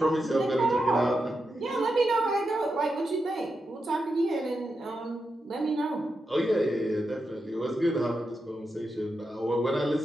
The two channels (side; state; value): both; normal; correlation 0.87